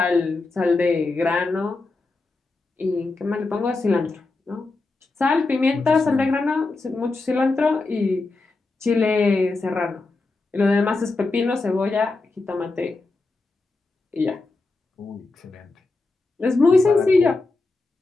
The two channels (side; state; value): right; quieter; 3.4 dB